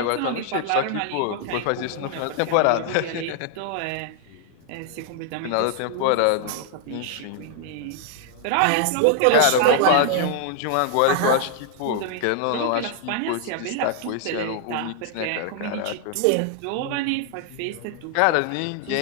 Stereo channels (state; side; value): different; both; correlation 0.00